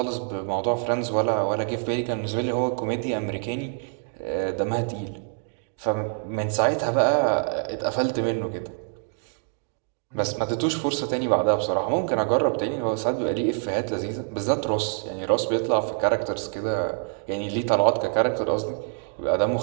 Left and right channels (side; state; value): left; silent; 55 dB below the other